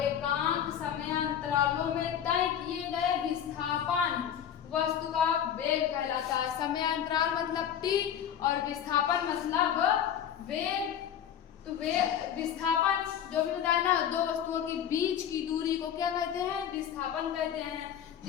एकांक समयांतरालों में तय किए गए विस्थापन वस्तु का वेग कहलाता है। समयांतराल मतलब टी और विस्थापन मतलब वेग। तो विस्थापन जो भी बताया ना, दो वस्तुओं के बीच की दूरी को क्या कहते हैं? विस्थापन कहते हैं। तो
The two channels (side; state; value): right; quieter; 9.3 dB